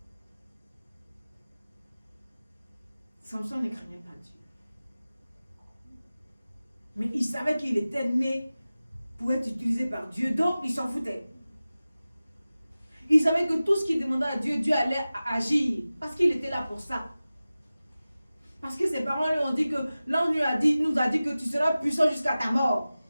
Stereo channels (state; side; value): inverted; both; correlation -0.96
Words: Samson ne craignait pas Dieu. Mais il savait qu'il était né pour être utilisé par Dieu, donc il s'en foutait. Il savait que tout ce qu'il demandait à Dieu, Dieu allait agir, parce qu'il était là pour ça. Parce que ses parents lui ont dit que, l'ange nous a dit que tu seras puissant jusqu'à ta mort.